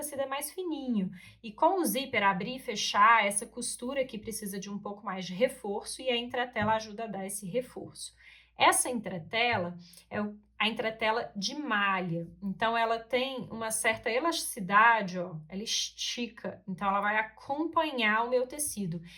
é mais fininho. E com o zíper abrir e fechar, essa costura aqui precisa de um pouco mais de reforço e a entretela ajuda a dar esse reforço. Essa entretela é a entretela de malha. Então, ela tem uma certa elasticidade, ó, ela estica. Então, ela vai acompanhar o meu tecido.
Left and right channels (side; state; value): both; identical; correlation 1.00